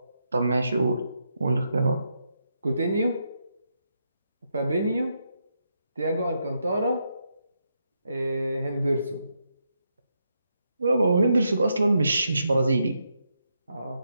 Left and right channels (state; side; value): inverted; both; correlation -0.81